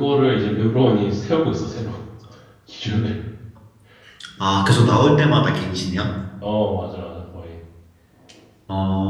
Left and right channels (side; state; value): both; identical; correlation 1.00